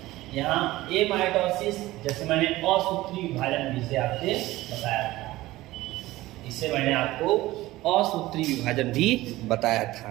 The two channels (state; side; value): quieter; left; 17.6 dB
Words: यहाँ एमाइटोसिस, जैसे मैंने असूत्री विभाजन भी से आपसे बताया था, इसे मैंने आपको असूत्री विभाजन भी बताया था।